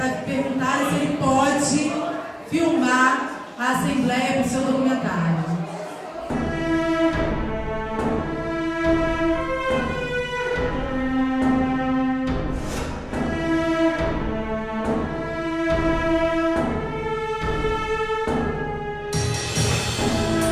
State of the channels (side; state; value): both; identical; correlation 1.00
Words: perguntar se ele pode filmar a Assembleia para o seu documentário.